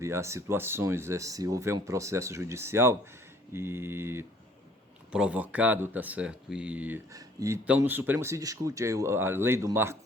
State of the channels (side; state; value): both; normal; correlation 0.58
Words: a situações se houver um processo judicial e provocado, tá certo? E então no Supremo se discute a lei do